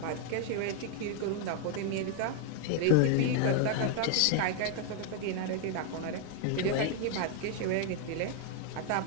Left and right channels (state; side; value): different; both; correlation 0.00